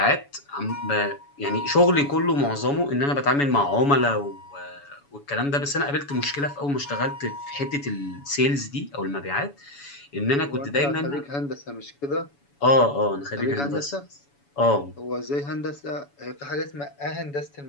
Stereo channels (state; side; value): late; right; 7.1 ms